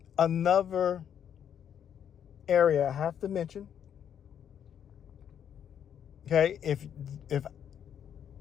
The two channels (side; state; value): right; quieter; 8.9 dB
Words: another area I have to mention. Okay,